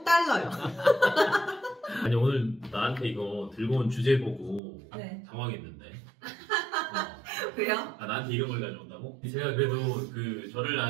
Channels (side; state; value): left; drops out; at 4.6 s